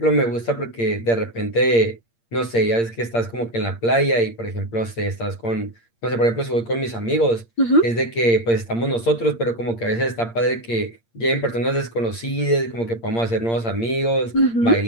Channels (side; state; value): right; late; 8.7 ms